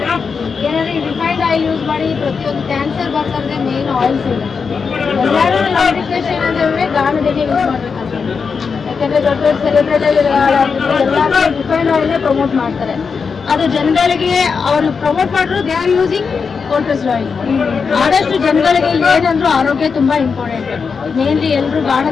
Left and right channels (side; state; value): right; quieter; 5.5 dB